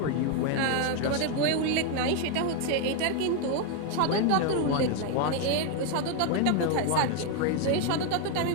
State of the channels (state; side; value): different; both; correlation 0.01